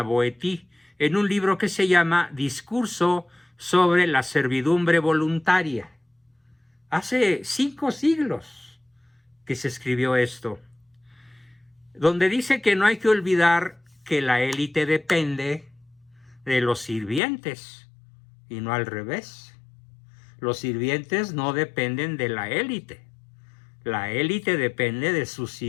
en un libro que se llama Discurso sobre la servidumbre voluntaria. Hace 5 siglos que se escribió esto, donde dice que no hay que olvidar que la élite depende de los sirvientes y no al revés. Los sirvientes no dependen de la élite depende de sus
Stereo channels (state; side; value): drops out; right; at 17.2 s